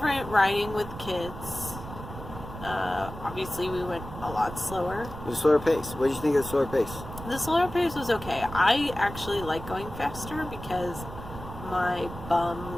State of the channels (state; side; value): noise; right; rumble, 11 dB below the sound